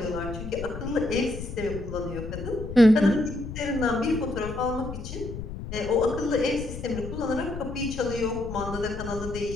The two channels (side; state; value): left; noise; rumble, 8 dB below the sound